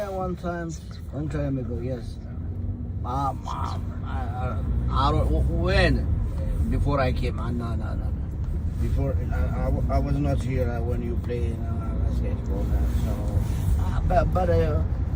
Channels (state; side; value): identical; both; correlation 1.00